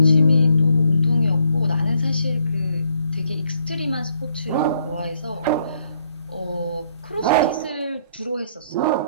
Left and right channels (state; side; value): inverted; both; correlation -0.69